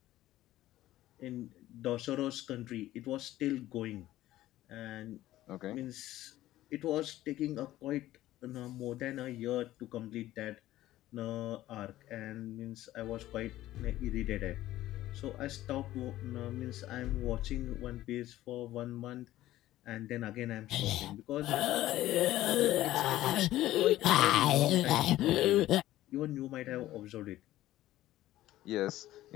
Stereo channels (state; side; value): quieter; right; 14.9 dB